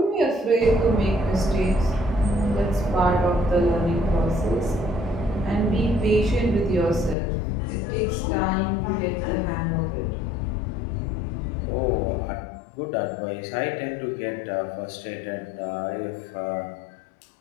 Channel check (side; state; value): right; drops out; at 7.2 s